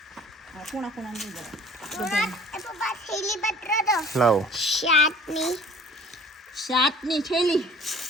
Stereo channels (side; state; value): both; normal; correlation 0.50